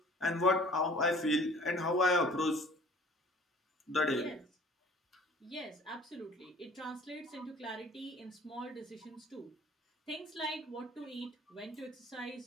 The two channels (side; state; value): both; normal; correlation 0.51